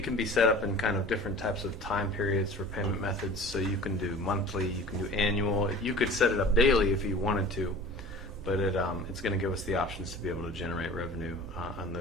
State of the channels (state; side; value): normal; both; correlation 0.41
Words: can be set up in kind of different types of time periods for payment methods. So you can do monthly, you can do annual. You could set it up daily if you wanted to, but it's going to give us the options to be able to generate revenue on